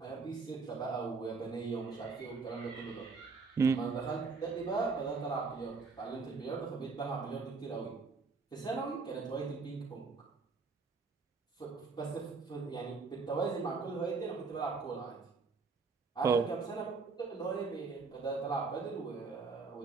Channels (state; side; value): quieter; left; 4.5 dB